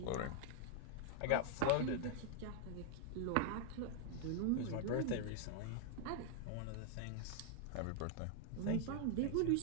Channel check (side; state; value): both; different; correlation -0.01